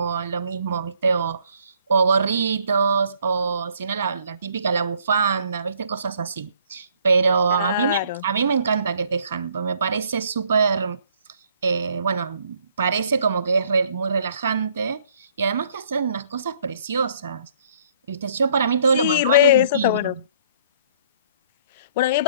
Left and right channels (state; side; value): inverted; both; correlation -0.62